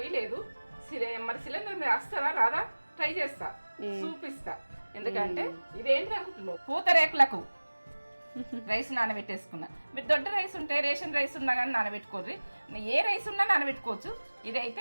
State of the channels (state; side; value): inverted; both; correlation -1.00